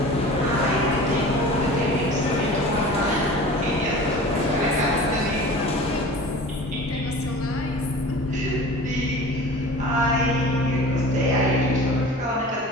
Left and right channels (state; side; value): normal; both; correlation 0.39